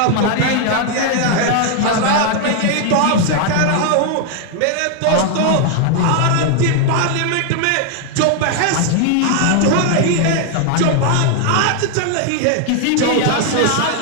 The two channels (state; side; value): different; both; correlation 0.00